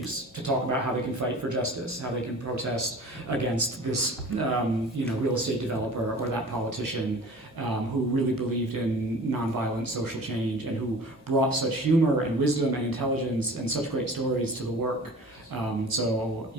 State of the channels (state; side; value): normal; both; correlation 0.42